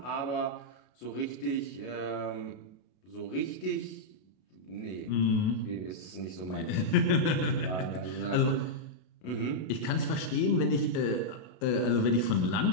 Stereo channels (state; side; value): late; right; 32 ms